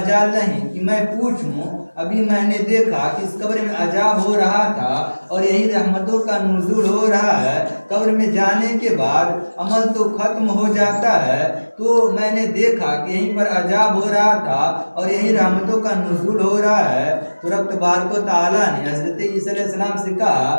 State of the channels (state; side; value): inverted; both; correlation -1.00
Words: نہیں کہ میں پوچھوں، ابھی میں نے دیکھا کہ اس قبر میں عذاب ہو رہا تھا اور یہی رحمتوں کا نزول ہو رہا ہے۔ قبر میں جانے کے بعد عمل تو ختم ہو جاتا ہے، تو میں نے دیکھا کہ یہیں پر عذاب ہو رہا تھا اور یہی رحمتوں کا نزول ہو رہا ہے۔ تو رب تبارک و تعالیٰ نے حضرت عیسیٰ علیہ السلام سے کہا